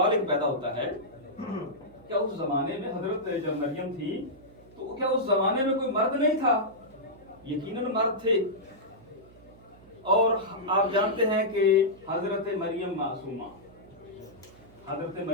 एक पैदा होता है, क्या उस जमाने में हजरत जब मरियम थी तो क्या उस जमाने में कोई मर्द नहीं था? यकीनन मर्द थे। और आप जानते हैं कि हजरत मरियम मासूमा, हजरत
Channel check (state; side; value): noise; right; hum, 23 dB below the sound